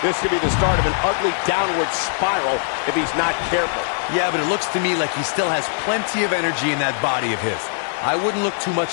This could be the start of an ugly downward spiral if he's not careful. Yeah, but it looks to me like he still has plenty of energy in that body of his. I wouldn't look too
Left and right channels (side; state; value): right; silent; digital silence